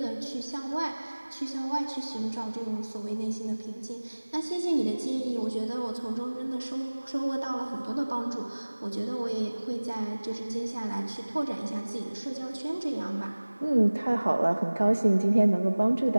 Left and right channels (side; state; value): both; inverted; correlation -1.00